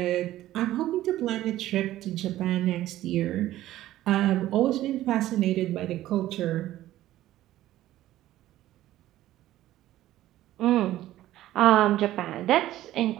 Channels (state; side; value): quieter; left; 14.4 dB